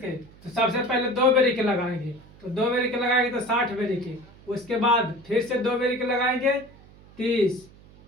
तो सबसे पहले 2 बेरी के लगाएंगे। तो 2 बेरी के लगाएंगे तो 60 बेरी के। उसके बाद फिर से 2 बेरी के लगाएंगे 30।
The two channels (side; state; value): right; noise; hum, 24 dB below the sound